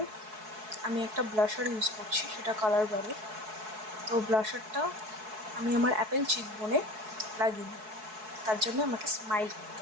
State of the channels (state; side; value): late; left; 4.7 ms